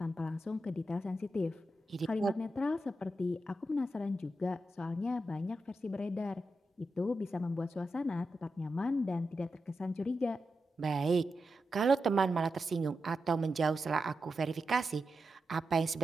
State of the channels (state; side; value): normal; both; correlation 0.88